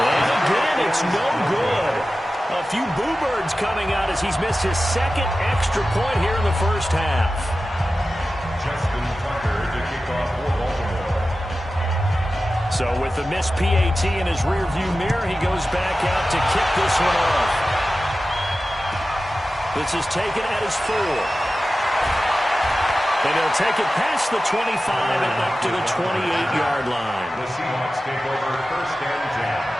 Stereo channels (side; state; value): both; normal; correlation 0.94